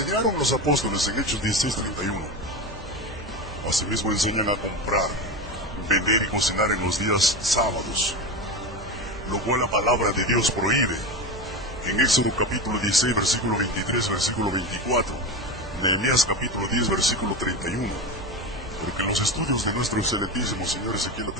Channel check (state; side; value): normal; both; correlation 0.21